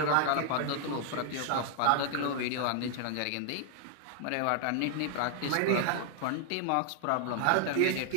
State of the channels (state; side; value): different; both; correlation 0.00